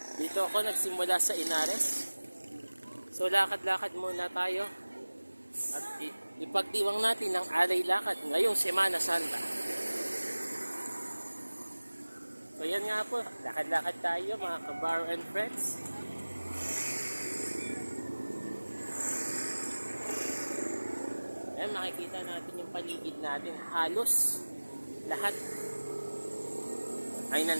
Dito ako nagsimula sa Inares. So lakad-lakad muna tayo. At ipagdiwang natin ang alay lakad ngayong Semana Santa. So yan nga po, lakad-lakad tayo mga kabaro and friends. Ayan, makikita natin yung paligid natin. Halos lahat ay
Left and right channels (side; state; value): both; inverted; correlation -1.00